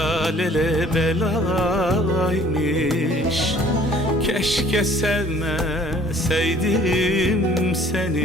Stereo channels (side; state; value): both; normal; correlation 0.55